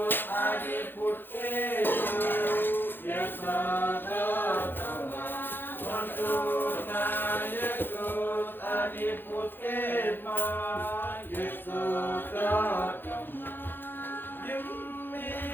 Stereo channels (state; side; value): late; right; 0.098 ms